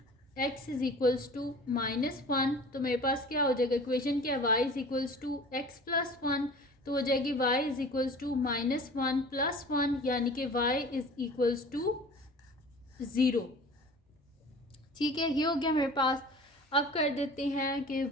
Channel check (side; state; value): both; normal; correlation 0.42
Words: x is equals to -1। तो मेरे पास क्या हो जाएगा, इक्वेशन क्या है, y is equals to x plus 1। तो हो जाएगी y is equals to -1 plus 1, यानी कि y इज इक्वल्स टू 0। ठीक है, ये हो गया मेरे पास। अब कर देते हैं कि